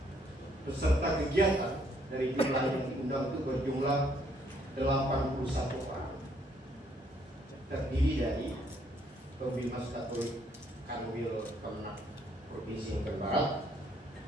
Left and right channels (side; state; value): both; normal; correlation 0.68